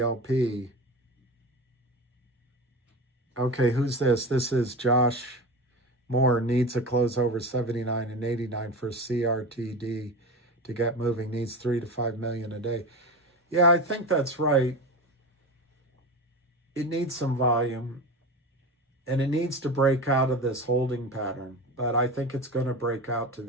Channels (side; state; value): both; normal; correlation 0.26